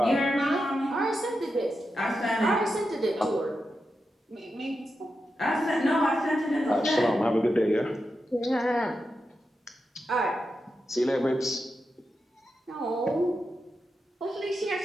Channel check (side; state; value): both; normal; correlation 0.88